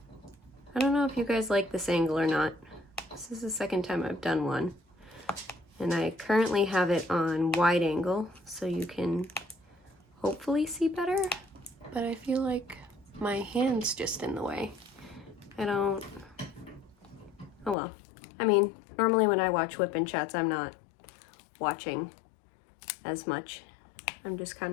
I don't know if you guys like this angle or not. This is the second time I've done one. And I currently have it on wide angle, so you can hopefully see better. But I feel like my hand's just in the way. I don't, oh well. I mean, normally when I watch WIP and chats, I'm not watching as much. I'm just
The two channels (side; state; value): right; drops out; at 17.8 s